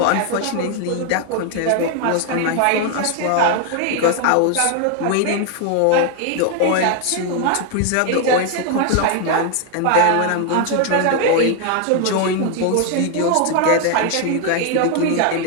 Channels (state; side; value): different; both; correlation 0.00